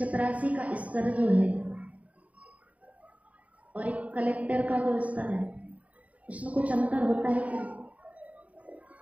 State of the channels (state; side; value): late; left; 0.068 ms